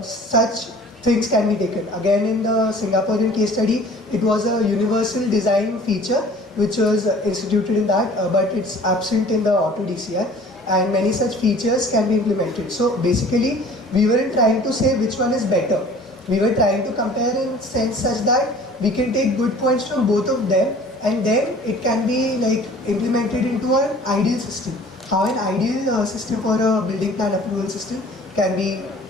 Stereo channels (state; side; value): normal; both; correlation 0.48